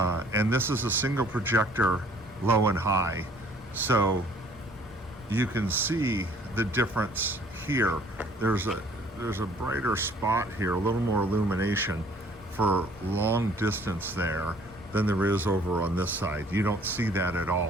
this is a single projector, low and high. So you can see the difference here. There's a brighter spot here, a little more illumination for long distance there than there is over on this side. You don't see that at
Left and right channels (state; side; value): normal; both; correlation 0.58